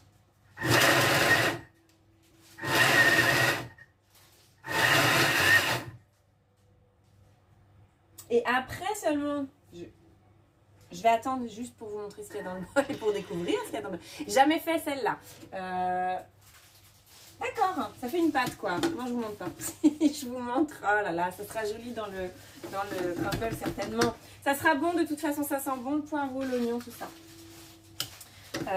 Et après seulement, je vais attendre juste pour vous montrer ce qu'il y a dans le bol et pour découvrir ce qu'il y a dans le bol. Jamais fait celle-là. D'accord, ça fait une pâte quoi. Moi je vous montre pas. Je vous montre, oh là là, ça sera joli dans le crumble certainement. Ça sera bon de toute façon, ça sent bon le poireau, l'oignon, tout ça.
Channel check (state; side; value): identical; both; correlation 1.00